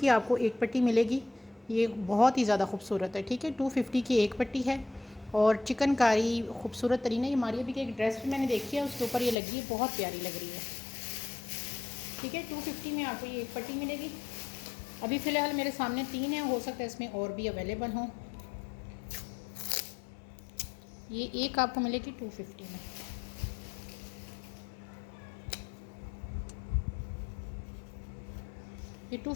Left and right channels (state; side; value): drops out; right; at 9.3 s